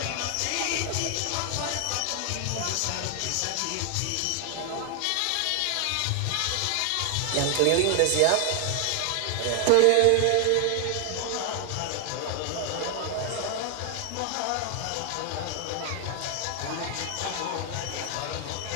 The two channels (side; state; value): both; different; correlation 0.00